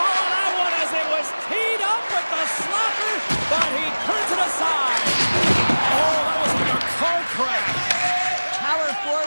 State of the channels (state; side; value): inverted; both; correlation -1.00